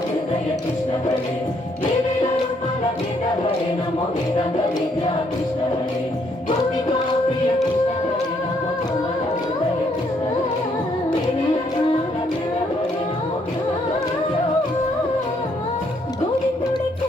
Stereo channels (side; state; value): both; normal; correlation 0.70